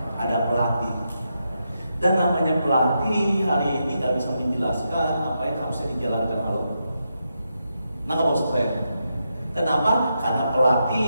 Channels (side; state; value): both; inverted; correlation -0.84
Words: ada pelatih. Dan namanya pelatih hari ini nggak bisa menjelaskan apa yang harusnya dijalankan. Halo. Nah, kamu maksud saya? Kenapa? Karena